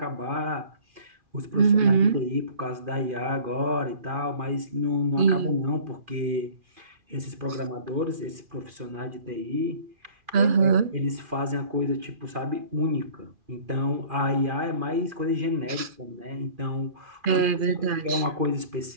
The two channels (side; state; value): left; late; 2.4 ms